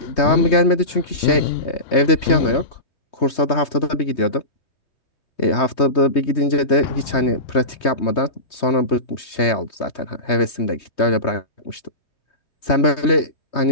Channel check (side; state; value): right; late; 3.2 ms